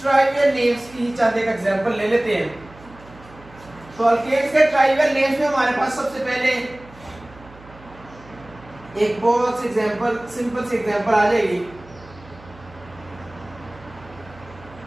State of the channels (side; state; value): right; noise; hum, 22 dB below the sound